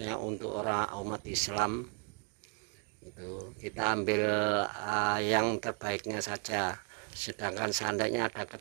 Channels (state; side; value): quieter; left; 39.8 dB